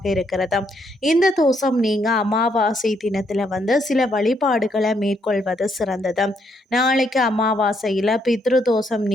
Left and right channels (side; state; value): both; normal; correlation 0.74